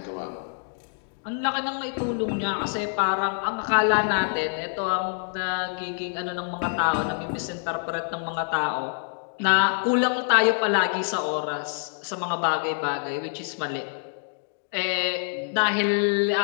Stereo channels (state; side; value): silent; right; digital silence